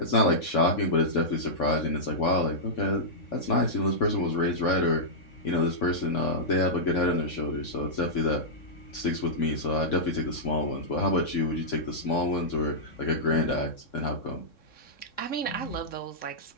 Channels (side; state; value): right; late; 3.6 ms